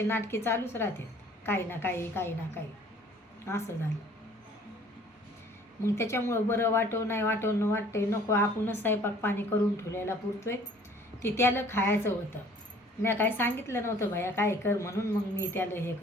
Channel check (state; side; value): normal; both; correlation 0.54